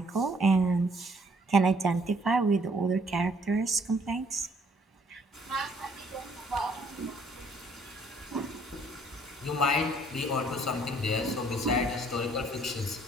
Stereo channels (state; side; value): normal; both; correlation 0.62